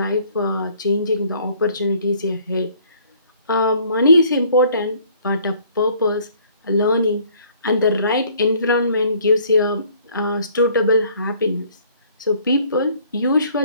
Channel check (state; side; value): inverted; both; correlation -0.59